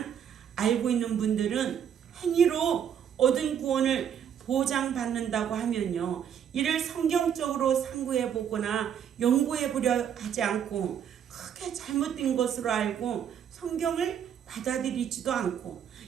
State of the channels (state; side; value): quieter; left; 8.7 dB